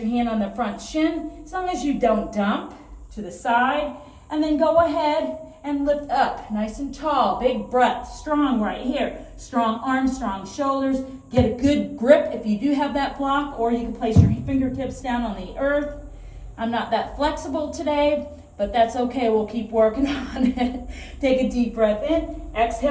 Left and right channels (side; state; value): both; identical; correlation 1.00